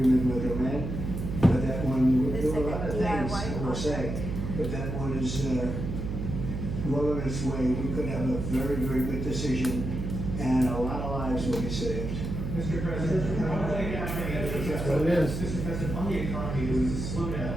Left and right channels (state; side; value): noise; right; hum, 4 dB below the sound